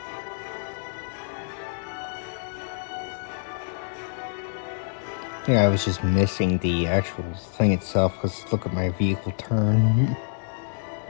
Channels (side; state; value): right; silent; 59 dB below the other